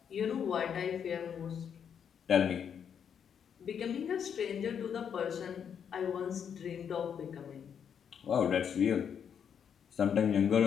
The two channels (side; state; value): right; quieter; 7.8 dB